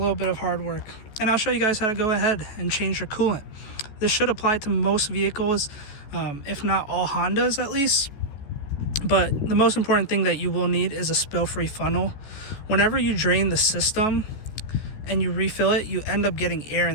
bit of hard work. And I'll show you guys how to go ahead and change your coolant. This should apply to most vehicles, if not all Hondas at least. But the most important thing that you will need is a spill-free funnel. Whenever you drain the system and you refill it, you end up getting air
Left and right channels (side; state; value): right; late; 14 ms